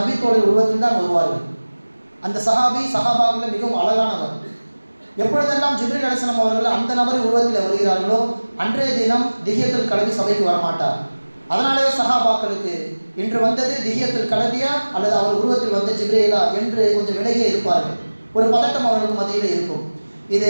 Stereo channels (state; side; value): inverted; both; correlation -1.00